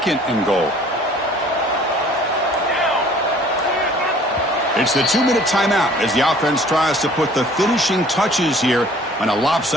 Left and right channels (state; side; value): normal; both; correlation 0.53